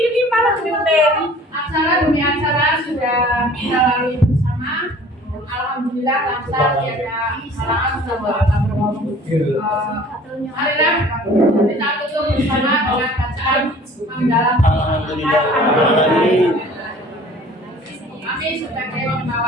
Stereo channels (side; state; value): both; normal; correlation 0.49